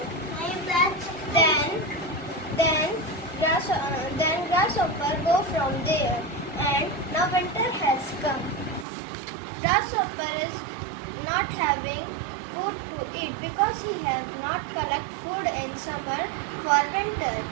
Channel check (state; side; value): drops out; left; at 8.8 s